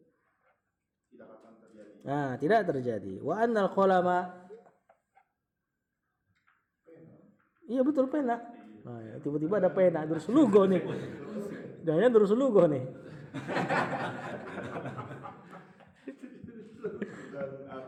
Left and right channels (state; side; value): identical; both; correlation 1.00